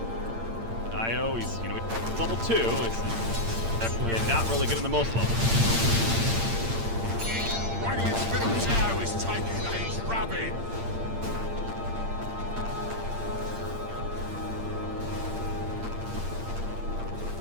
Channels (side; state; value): left; late; 8.8 ms